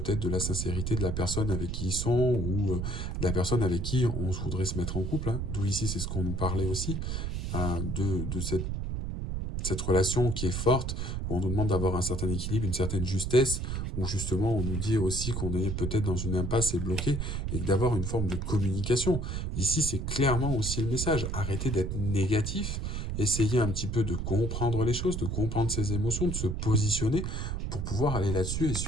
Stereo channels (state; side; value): noise; right; rumble, 3 dB below the sound